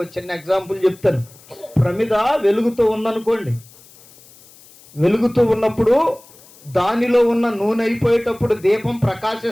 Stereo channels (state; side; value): noise; left; hiss, 25 dB below the sound